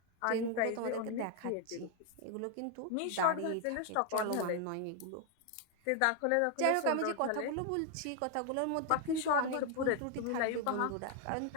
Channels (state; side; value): different; both; correlation 0.01